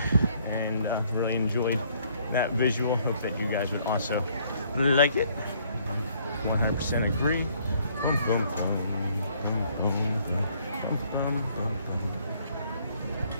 and really enjoyed that visual. Hope that you guys would also like it. 100% agree. Boom, boom, boom, boom, boom, boom, boom, boom, boom.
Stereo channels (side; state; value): both; inverted; correlation -0.64